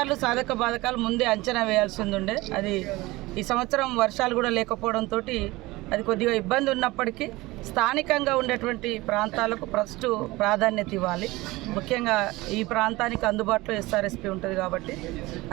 సాధక బాధకాలు ముందే అంచనా వేయాల్సి ఉండే, అది ఈ సంవత్సరం వర్షాలు కూడా లేకపోవడంతో అది కొద్దిగా ఇబ్బంది ఉన్నప్పటికీ స్థానికంగా ఉండేటువంటి ప్రాంతాలకు ఫస్ట్ ప్రాధాన్యత ఇవ్వాలి. ముఖ్యంగా ఈ ప్రాంతానికి అందుబాటులో ఎస్ఆర్ఎస్పీ ఉంటుంది కాబట్టి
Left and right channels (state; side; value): quieter; left; 20.6 dB